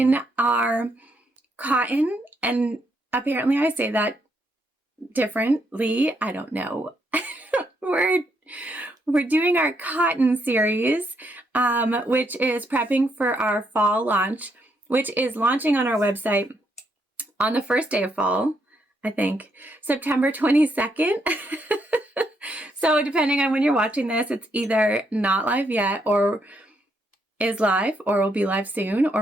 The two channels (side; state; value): both; normal; correlation 0.76